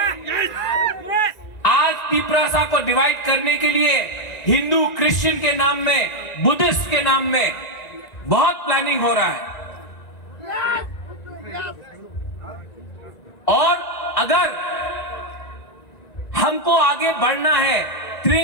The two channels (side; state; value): right; late; 1.9 ms